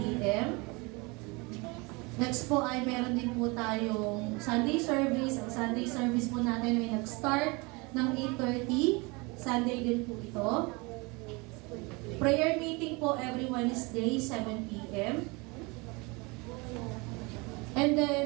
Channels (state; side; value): quieter; left; 27.0 dB